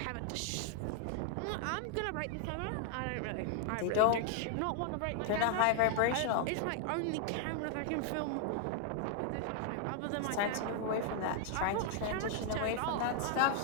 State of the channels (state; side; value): different; both; correlation 0.00